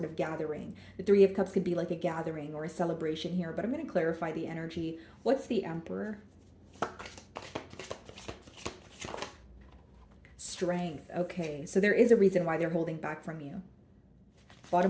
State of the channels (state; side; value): identical; both; correlation 1.00